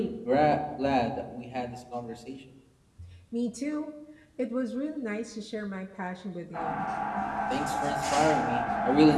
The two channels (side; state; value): both; identical; correlation 1.00